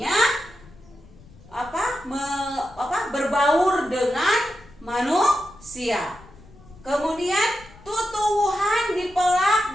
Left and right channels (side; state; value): left; noise; rumble, 23 dB below the sound